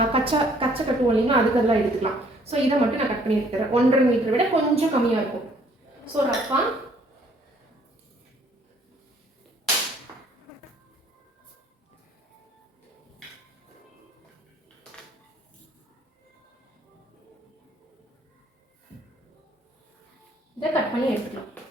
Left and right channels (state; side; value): normal; both; correlation 0.61